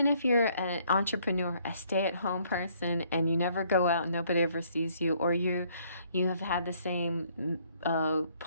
if you're an entrepreneur, a stay-at-home person, and you never go out and nobody ever sees you, or you have had the same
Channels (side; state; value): both; inverted; correlation -0.65